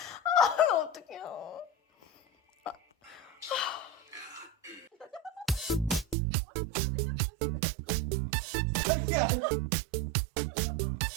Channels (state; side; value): drops out; left; at 6.2 s